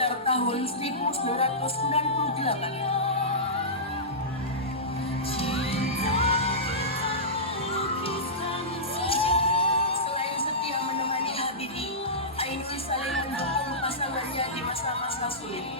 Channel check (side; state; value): both; normal; correlation -0.17